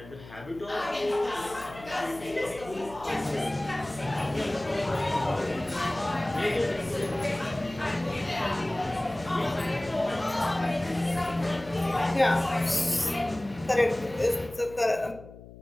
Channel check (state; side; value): noise; left; hum, 17 dB below the sound